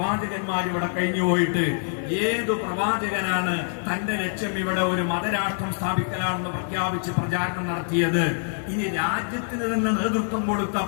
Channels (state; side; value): silent; right; digital silence